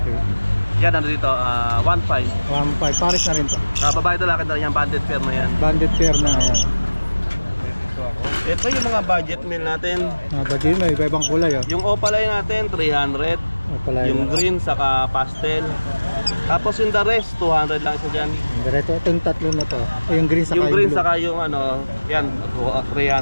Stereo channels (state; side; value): inverted; both; correlation -1.00